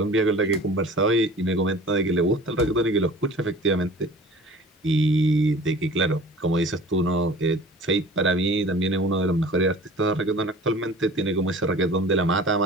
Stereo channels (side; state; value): both; normal; correlation 0.44